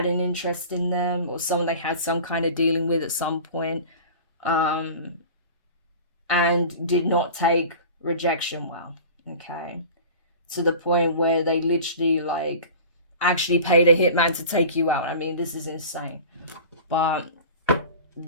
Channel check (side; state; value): both; inverted; correlation -0.38